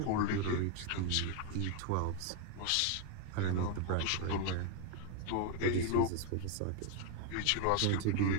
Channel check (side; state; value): both; different; correlation 0.01